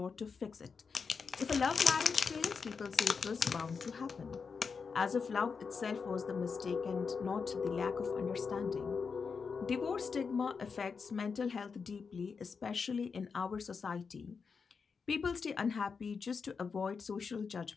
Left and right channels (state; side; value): quieter; right; 5.4 dB